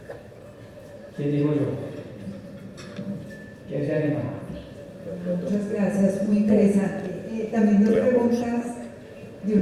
¿Quién digo yo? ¿Quién se anima? Muchas gracias, muy interesante. También dos preguntas de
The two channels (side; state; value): both; identical; correlation 1.00